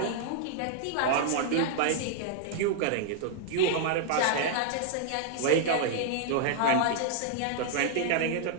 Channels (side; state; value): both; different; correlation -0.01